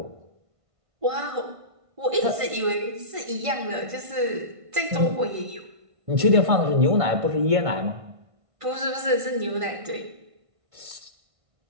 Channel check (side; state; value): left; late; 1.5 ms